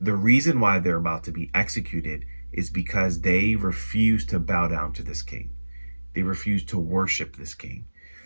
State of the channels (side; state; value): both; inverted; correlation -1.00